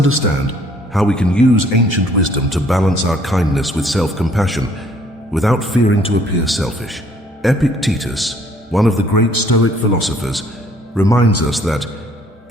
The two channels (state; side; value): normal; both; correlation 0.61